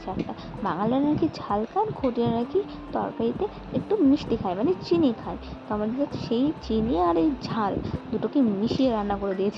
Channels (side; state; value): both; identical; correlation 1.00